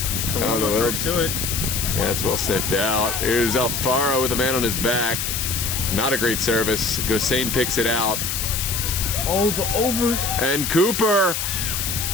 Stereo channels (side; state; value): left; noise; hiss, 2 dB below the sound